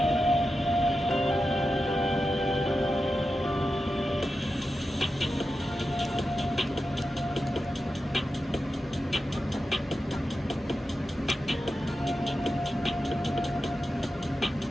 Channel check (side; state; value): both; normal; correlation 0.90